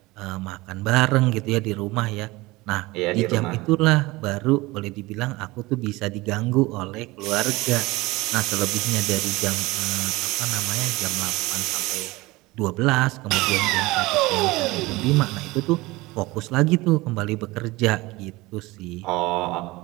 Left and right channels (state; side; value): quieter; left; 21.2 dB